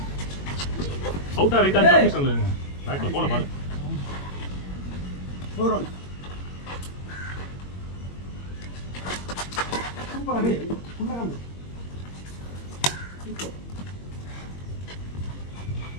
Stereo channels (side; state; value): right; late; 21 ms